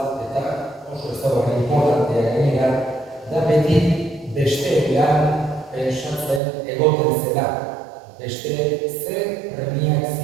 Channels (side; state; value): left; drops out; at 6.4 s